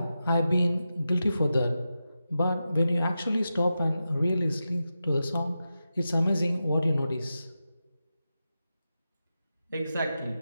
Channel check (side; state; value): both; inverted; correlation -0.91